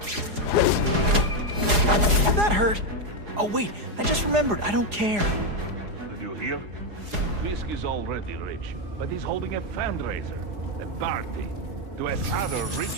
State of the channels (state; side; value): late; left; 4.8 ms